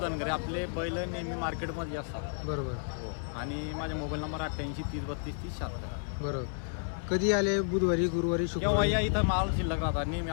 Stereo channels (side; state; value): right; silent; 57 dB below the other